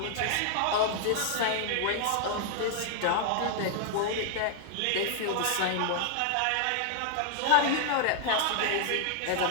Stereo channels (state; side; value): different; both; correlation 0.00